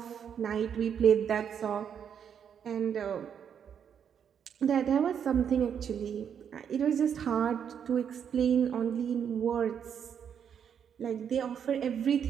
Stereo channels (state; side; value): quieter; left; 8.0 dB